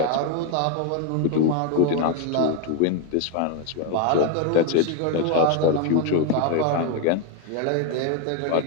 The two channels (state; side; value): different; both; correlation 0.01